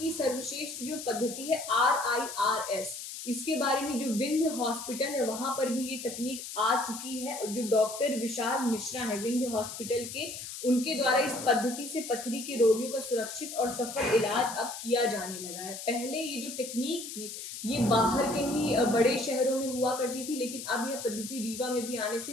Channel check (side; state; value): left; noise; hiss, 9 dB below the sound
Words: सर्वश्रेष्ठ जो पद्धति है RIRS, इसके बारे में जो विंध्य हॉस्पिटल है वहां पर भी ये तकनीक आ चुकी है। जो डॉक्टर विशाल मिश्रा है विंध्य हॉस्पिटल के, उनके द्वारा इस पद्धति से पथरी के रोगियों का सुरक्षित और सफल इलाज अब किया जाने लगा है। पहले ये जो टेक्निक थी ये बाहर के ही बड़े शहरों में हुआ करती थी, लेकिन अब यह पद्धति रीवा में भी आने से